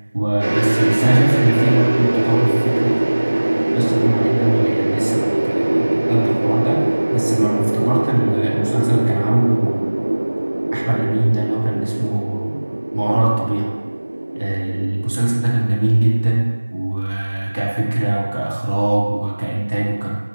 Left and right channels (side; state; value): both; inverted; correlation -1.00